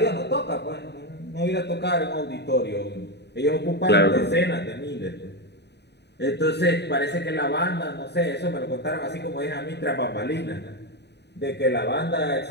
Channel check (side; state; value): right; late; 0.49 ms